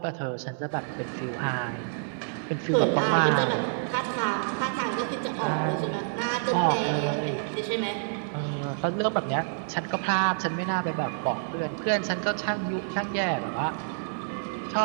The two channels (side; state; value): left; silent; digital silence